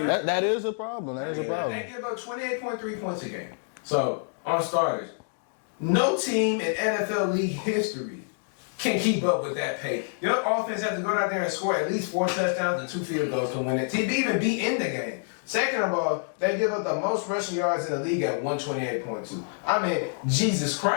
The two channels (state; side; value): silent; right; digital silence